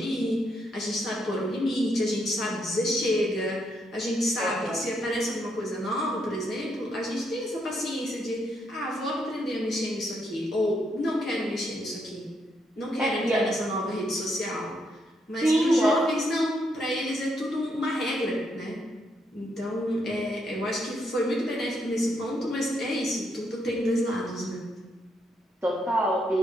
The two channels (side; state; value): both; normal; correlation 0.76